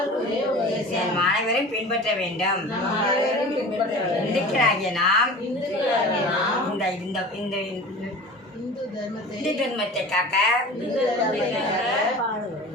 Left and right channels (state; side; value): normal; both; correlation 0.38